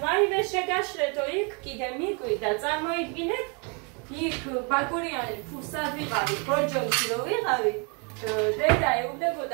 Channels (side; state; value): left; quieter; 34.7 dB